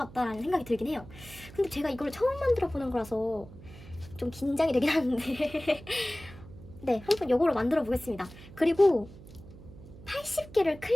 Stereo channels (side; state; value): right; noise; hum, 18 dB below the sound